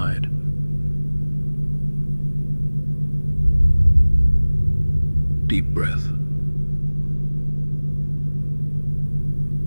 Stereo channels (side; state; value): both; inverted; correlation -1.00